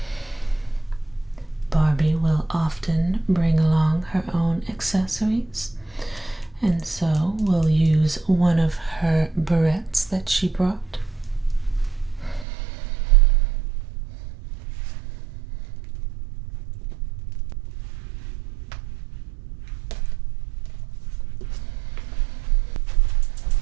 Barbie will often bring along her own accessories, and so we'll use one of her barrettes that she brought.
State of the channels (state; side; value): drops out; left; at 12.5 s